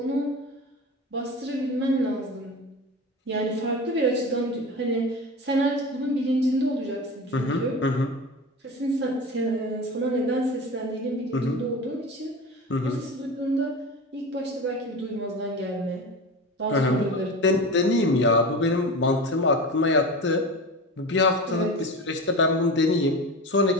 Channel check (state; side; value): normal; both; correlation 0.29